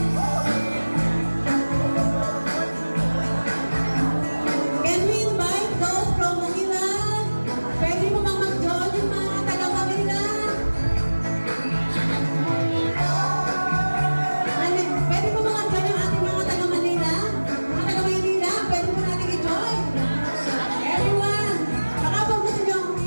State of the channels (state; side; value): inverted; both; correlation -1.00